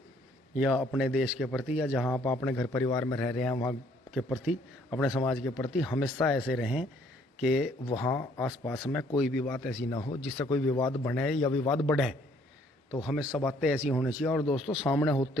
या अपने देश के प्रति या जहाँ आप अपने घर परिवार में रह रहे हैं वहाँ के प्रति, अपने समाज के प्रति हमेशा ऐसे रहें कि वहाँ आसपास में कोई भी बात ऐसी ना हो जिससे कोई विवाद बने या विवाद बढ़े। तो हमेशा बातें ऐसी होनी चाहिए। और दोस्तों सामने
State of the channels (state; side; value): normal; both; correlation 0.63